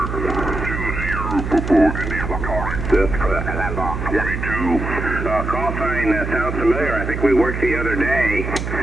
That's correct. Call sign sounds familiar. I think we worked the other day.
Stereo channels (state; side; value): noise; right; hum, 4 dB below the sound